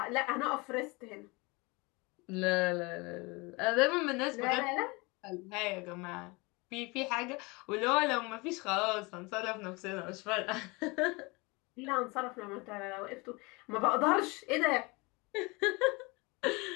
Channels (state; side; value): quieter; right; 26.3 dB